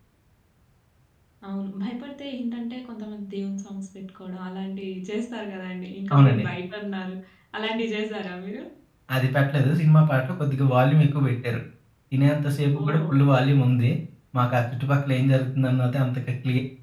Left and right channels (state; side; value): identical; both; correlation 1.00